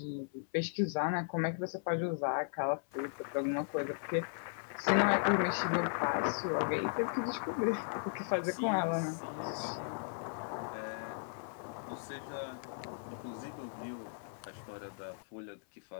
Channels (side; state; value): right; silent; 53 dB below the other